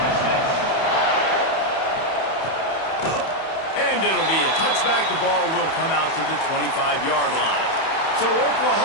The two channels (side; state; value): right; late; 31 ms